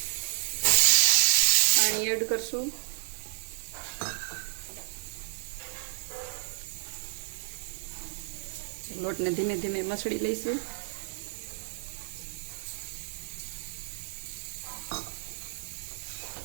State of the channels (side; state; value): left; silent; digital silence